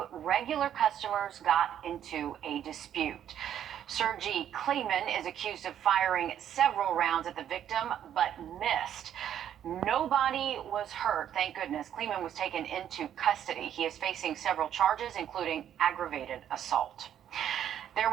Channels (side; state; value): left; quieter; 10.1 dB